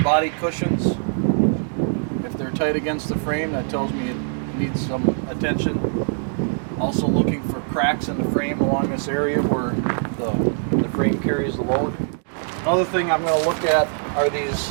body cushions. If they're tight against the frame, that tells me it needs some attention. Also looking for cracks in the frame along this area where the frame carries the load. Another thing I'm going to look at are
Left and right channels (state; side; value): silent; left; digital silence